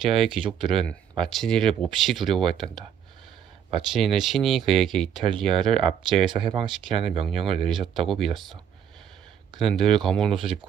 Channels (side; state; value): left; quieter; 8.8 dB